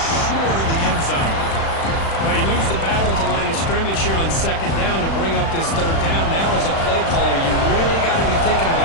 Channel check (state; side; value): late; right; 36 ms